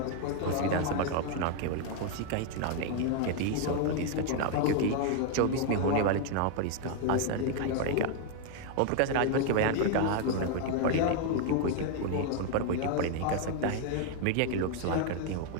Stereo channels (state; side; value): different; both; correlation 0.00